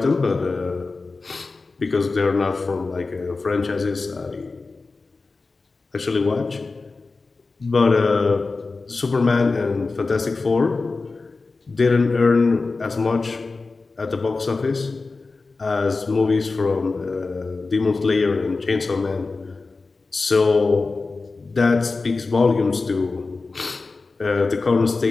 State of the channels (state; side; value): quieter; right; 3.8 dB